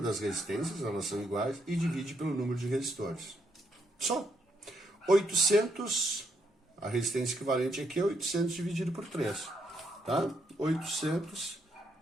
resistências, elas são iguais, e divide pelo número de resistores. Só. 800, a resistência equivalente aqui é 800 dividido por 3. Tá? 800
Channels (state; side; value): normal; both; correlation 0.76